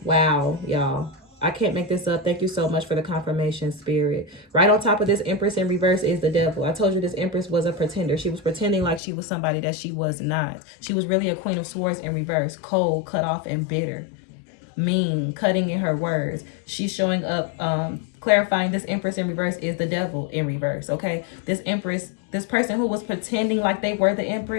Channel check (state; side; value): drops out; right; at 9.0 s